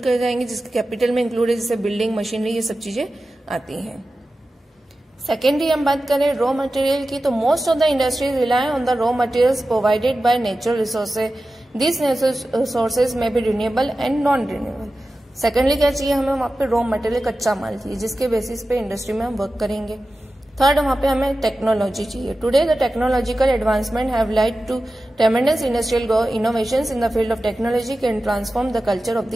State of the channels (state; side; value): normal; both; correlation 0.94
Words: कर जाएंगे जिसके कैपिटल में इंक्लूड है, जैसे बिल्डिंग, मशीनरी, ये सब चीजें आती हैं। सेकेंडरी हम बात करें रॉ मटेरियल की तो most of the industries rely on the raw materials provided by natural resources. This resources may be renewable and non renewable. Secondly क्या चाहिए हमें, वहां पे रॉ मटेरियल, कच्चा माल चाहिए जिसके बेसिस पे इंडस्ट्री में हम वर्क करेंगे। थर्ड, वहां पे हमें टेक्नोलॉजी चाहिए। Today the technological advancement have led to tremendous industrial innovations in the field of technology can transform the culture of